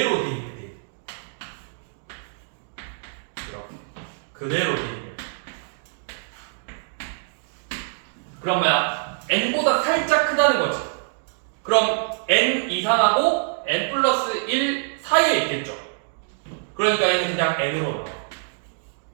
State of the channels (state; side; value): silent; left; digital silence